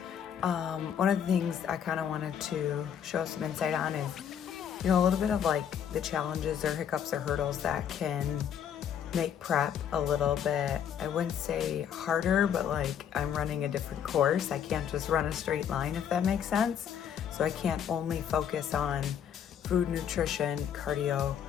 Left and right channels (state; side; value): quieter; right; 8.7 dB